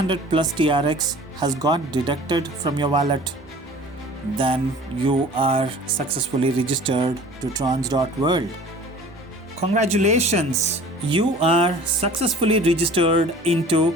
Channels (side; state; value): both; normal; correlation 0.46